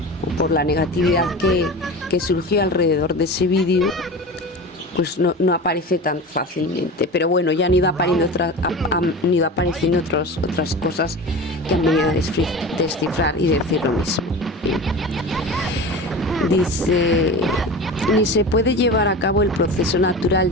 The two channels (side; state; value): both; normal; correlation 0.32